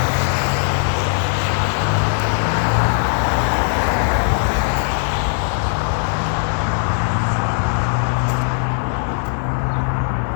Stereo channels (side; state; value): right; silent; 63 dB below the other